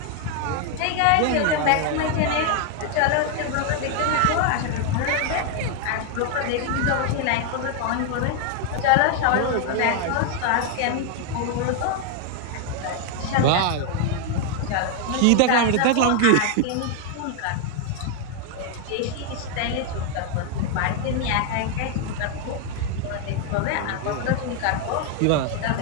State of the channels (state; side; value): different; both; correlation 0.00